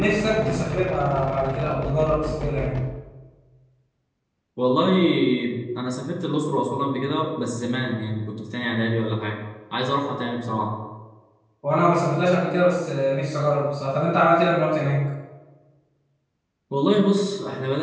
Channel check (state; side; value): identical; both; correlation 1.00